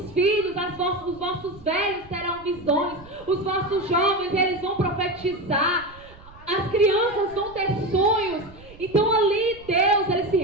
filhos, os vossos velhos terão visões, os vossos jovens, eles vão profetizar, as crianças vão ter sonhos. Então ali Deus, ele se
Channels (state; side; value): noise; right; rumble, 22 dB below the sound